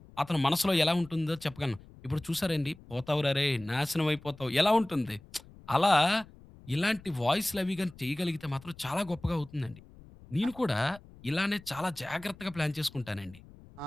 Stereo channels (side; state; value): left; noise; rumble, 22 dB below the sound